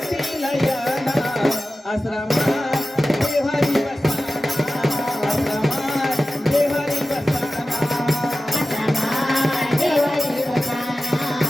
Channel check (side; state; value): both; normal; correlation 0.95